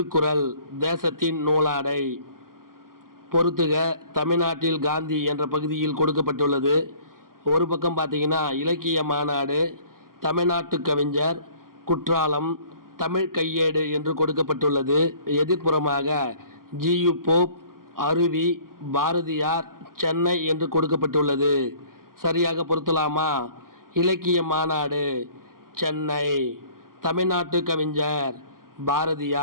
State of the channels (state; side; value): late; left; 0.92 ms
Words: தேசத்தின் நூலாடை. பொறுத்துக. தமிழ்நாட்டில் காந்தி என்ற பகுதியில் கொடுக்கப்பட்டுள்ளது. ஒரு பக்கம் பார்த்தீங்கன்னா இலக்கிய மாநாடு, தமிழ்நாட்டு கவிஞர், குற்றாலம், தமிழ் கையேடு என்று கொடுக்கப்பட்டுள்ளது. எதிர்ப்புறமாக ஜியு போப், அருவி, பாரதியார், சென்னை என்று கொடுக்கப்பட்டுள்ளது. சரியாக பொருத்தலாமா? இலக்கிய மாநாடு சென்னை, தமிழ்நாட்டு கவிஞர்